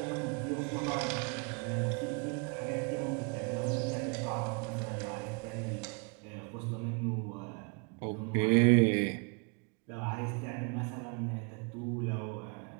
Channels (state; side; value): quieter; left; 33.8 dB